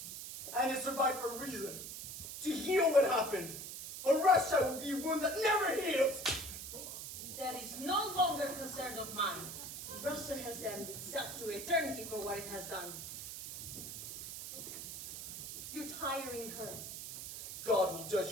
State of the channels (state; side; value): noise; right; hiss, 8 dB below the sound